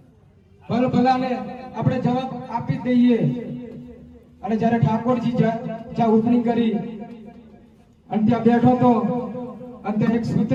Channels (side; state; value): both; identical; correlation 1.00